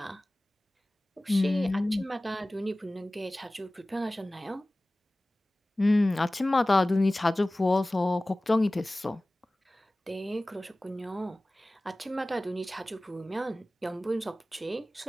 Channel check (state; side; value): normal; both; correlation 0.98